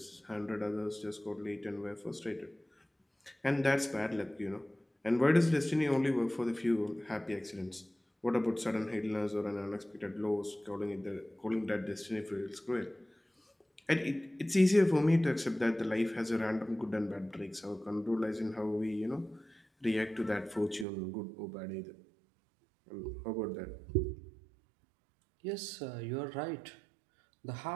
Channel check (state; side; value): drops out; left; at 20.9 s